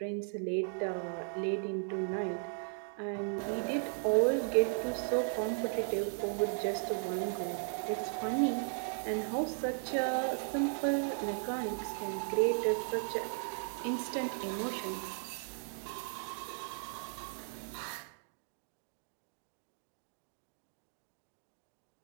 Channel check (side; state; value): left; silent; digital silence